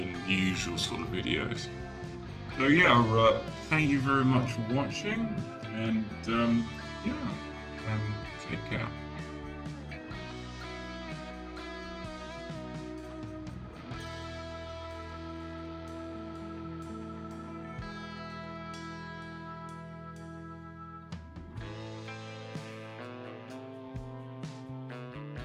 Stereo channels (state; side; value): identical; both; correlation 1.00